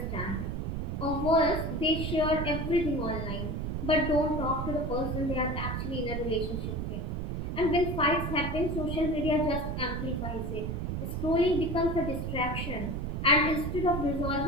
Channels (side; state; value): right; noise; rumble, 3 dB below the sound